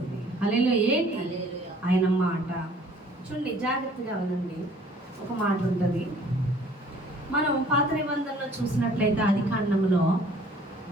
హల్లెలూయా. ఏంటి? ఆయన మాట. చూడండి, జాగ్రత్తగా వినండి. ఒక మాట ఉంటుంది. మనం పాత నిబంధనలో చూసినట్లయితే ఆదికాండంలో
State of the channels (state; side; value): normal; both; correlation 0.55